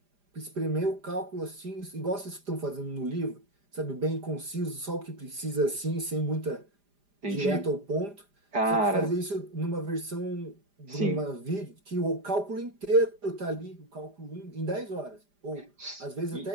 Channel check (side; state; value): left; late; 5.0 ms